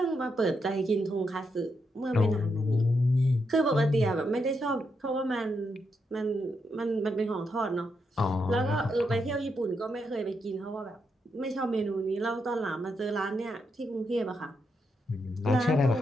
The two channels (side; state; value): both; normal; correlation 0.81